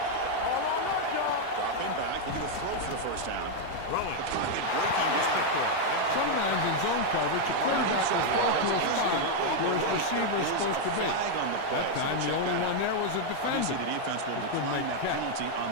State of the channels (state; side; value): different; both; correlation 0.00